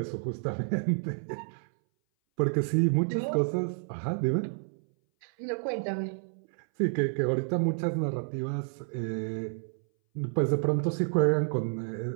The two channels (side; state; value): left; silent; 58 dB below the other